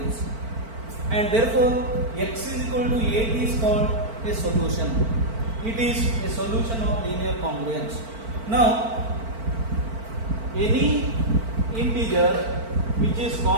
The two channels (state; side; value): late; left; 4.5 ms